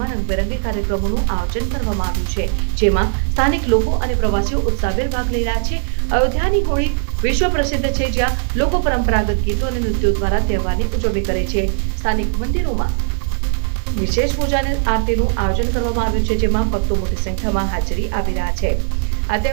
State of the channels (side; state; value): left; silent; digital silence